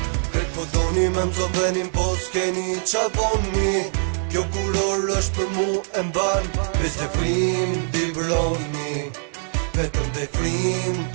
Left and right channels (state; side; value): silent; left; digital silence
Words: Këtë po doni me mzon venin po s'keni qa boni Kjo kuror është për mu e mban Veç dhe frim t'i broni Vetëm dhe frim